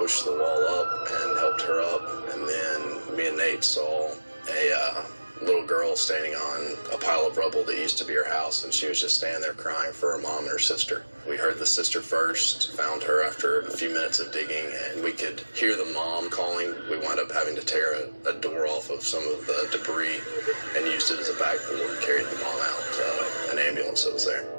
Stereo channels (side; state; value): both; inverted; correlation -1.00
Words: the wall up and helped her up, and then me and Nate saw a little girl standing on a pile of rubble that used to be her house, and she was just standing there crying for her mom and her sister. We heard the sister first, found her after a few minutes of digging, and we could hear the mom calling. We wound up having to tear a door off of some of the debris and used it as a backboard, carried the mom out to an ambulance that was there.